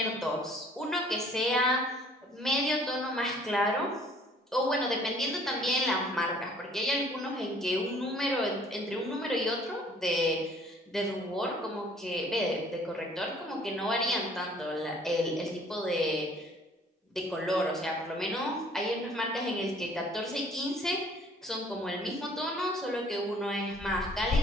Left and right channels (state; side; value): normal; both; correlation 0.56